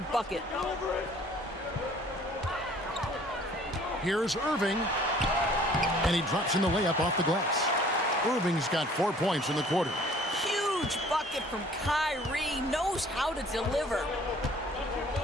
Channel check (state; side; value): normal; both; correlation 0.54